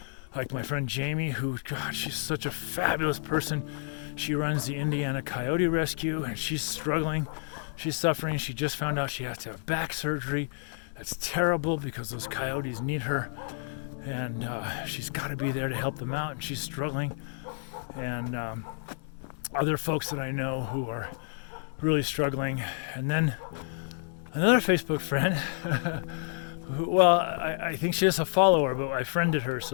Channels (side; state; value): right; silent; 56 dB below the other